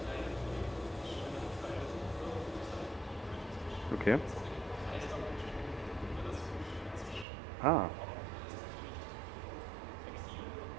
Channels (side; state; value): left; drops out; at 7.2 s